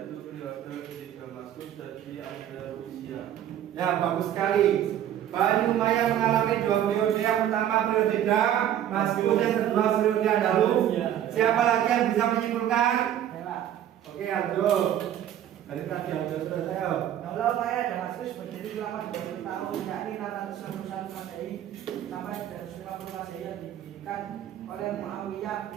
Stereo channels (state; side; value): quieter; left; 11.0 dB